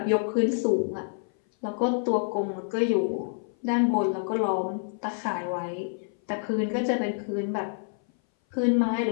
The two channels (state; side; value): silent; right; 58 dB below the other